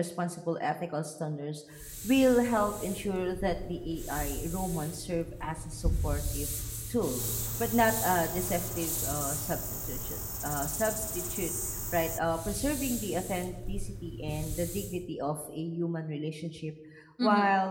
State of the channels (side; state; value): both; identical; correlation 1.00